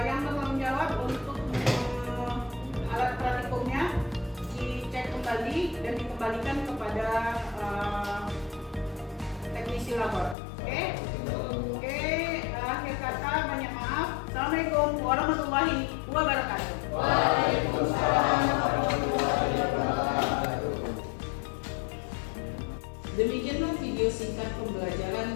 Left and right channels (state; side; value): drops out; right; at 10.4 s